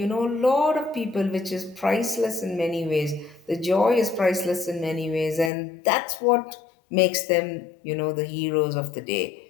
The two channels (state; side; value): drops out; right; at 5.5 s